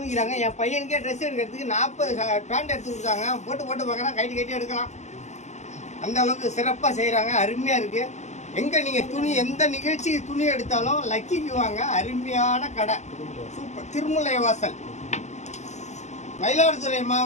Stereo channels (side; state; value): right; late; 0.33 ms